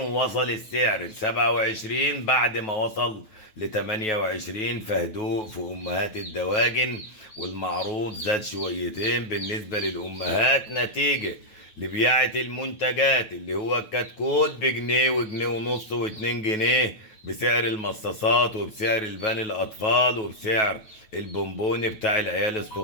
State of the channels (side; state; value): right; late; 9.3 ms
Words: السعر ل 27 بعد ما وصل ل 28، فهدوء في أمهات الدواجن، والمعروض زاد شويتين بالنسبة للأمهات نتيجة لبياعة المنتجات اللي هو الكتكوت بجنيه وجنيه ونص واتنين جنيه بسعر المصاصات، وبسعر البان الأطفال، وبسعر البونبوني بتاع العيال